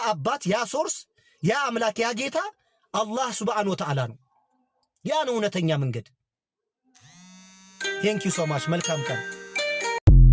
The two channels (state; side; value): identical; both; correlation 1.00